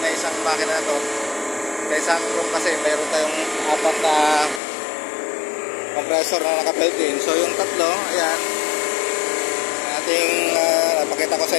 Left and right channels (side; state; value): right; drops out; at 4.6 s